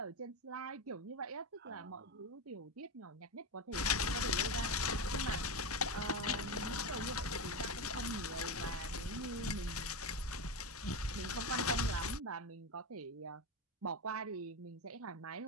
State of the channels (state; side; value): normal; both; correlation 0.16